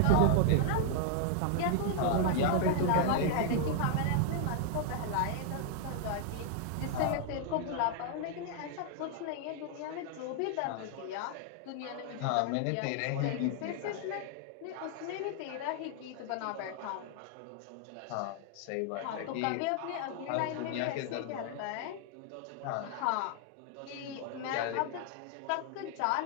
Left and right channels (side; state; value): both; different; correlation 0.00